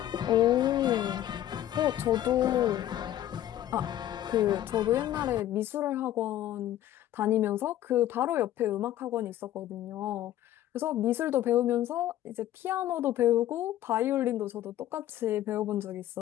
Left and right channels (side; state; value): right; quieter; 12.8 dB